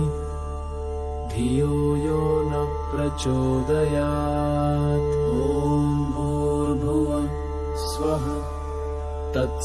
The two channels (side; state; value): both; identical; correlation 1.00